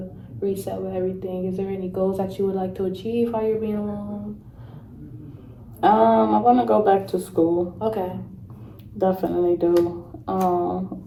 reset with everything. Is there any goals that you would like to achieve while you're being alone? I want to go back to school. Okay. Definitely do.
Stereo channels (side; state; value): both; identical; correlation 1.00